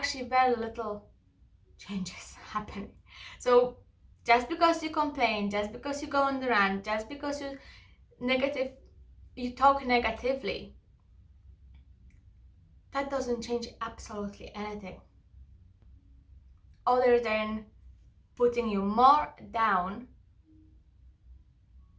very little changes happening. So just because you complain, just because you go on the rant, just because you talk negatively, that doesn't change absolutely anything, other than putting you more down,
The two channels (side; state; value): both; identical; correlation 1.00